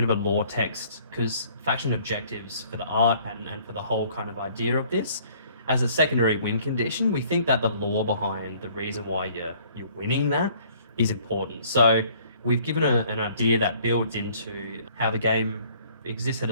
of a lore text because faction objectives for the art and for the whole kind of idea of this, as a secondary win condition, we think that the lore behind the reason why you're winning that is important. So we've given an idea that builds into how the game exists at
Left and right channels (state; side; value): inverted; both; correlation -0.58